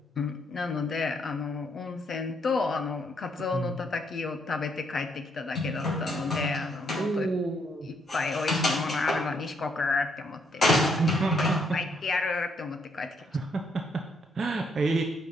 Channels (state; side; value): normal; both; correlation 0.73